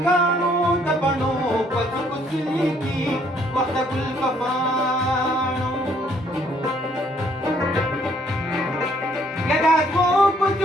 کاڼو د بڼو په څوکو څلیږي وخت د ګل په پاڼو یا د هغو په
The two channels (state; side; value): normal; both; correlation 0.65